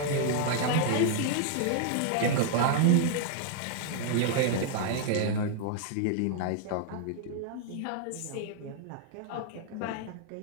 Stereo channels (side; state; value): both; different; correlation -0.01